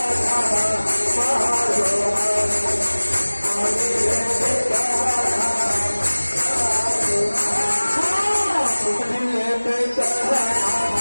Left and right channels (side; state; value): both; inverted; correlation -1.00